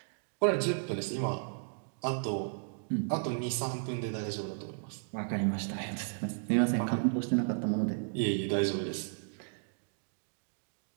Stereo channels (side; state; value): left; silent; digital silence